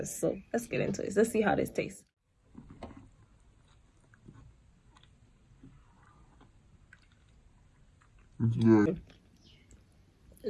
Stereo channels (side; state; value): both; identical; correlation 1.00